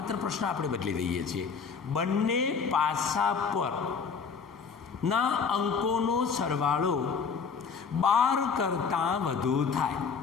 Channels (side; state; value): right; quieter; 5.8 dB